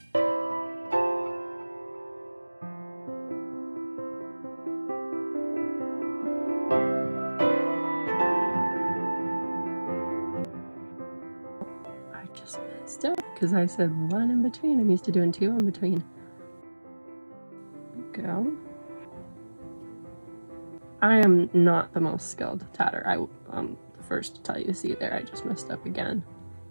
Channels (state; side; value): inverted; both; correlation -1.00